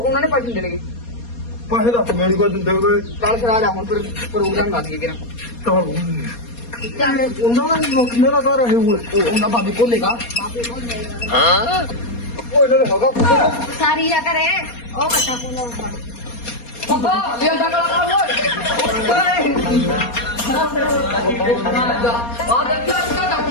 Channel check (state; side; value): late; right; 4.2 ms